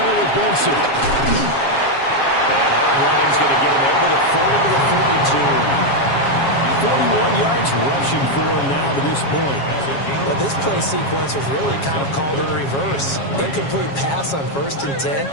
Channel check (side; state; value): right; late; 7.3 ms